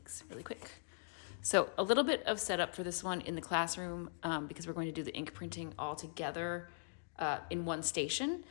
really quick. So a little bit of setup for this one in the classroom because we're going to do the ink printing all together in one station.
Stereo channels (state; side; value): silent; right; digital silence